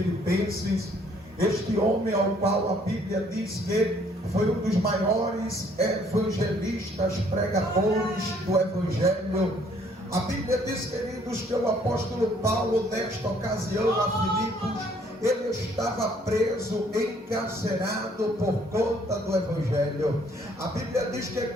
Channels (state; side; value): normal; both; correlation 0.63